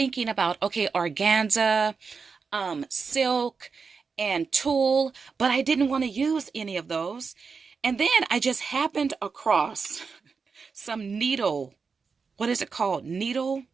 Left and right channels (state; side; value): quieter; left; 5.2 dB